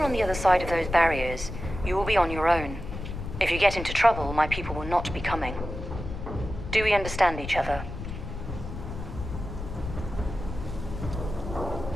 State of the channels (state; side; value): noise; left; rumble, 8 dB below the sound